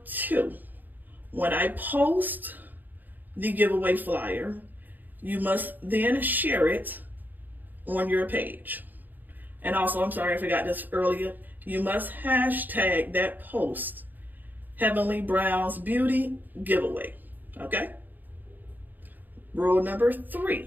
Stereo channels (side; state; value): left; late; 0.086 ms